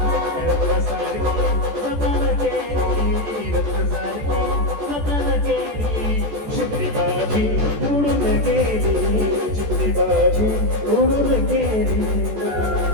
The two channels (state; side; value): late; left; 14 ms